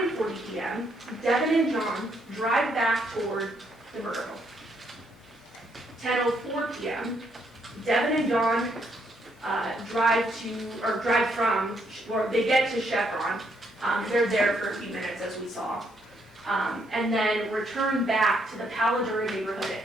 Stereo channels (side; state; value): both; normal; correlation 0.73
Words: p.m., Devyn and John drive back toward the murder home. 10:04 p.m., Devyn and John they get to Chevron. They're there for a few minutes, as we saw, and then return back to the Paladura neighborhood